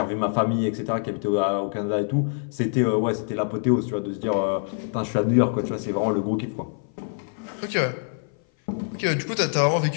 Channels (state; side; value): silent; right; 58 dB below the other